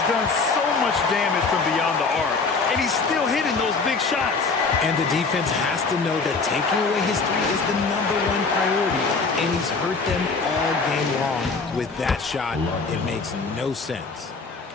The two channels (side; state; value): right; quieter; 4.4 dB